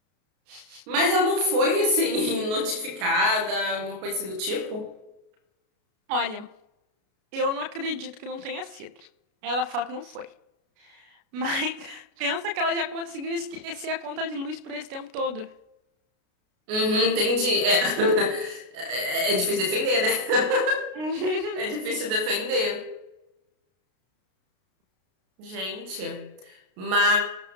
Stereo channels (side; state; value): left; late; 33 ms